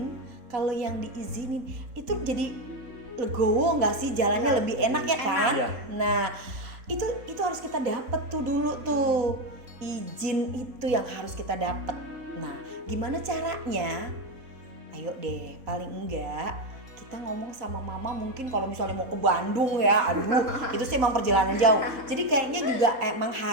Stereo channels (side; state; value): left; late; 4.2 ms